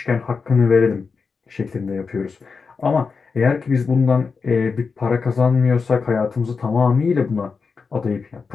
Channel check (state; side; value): quieter; right; 5.0 dB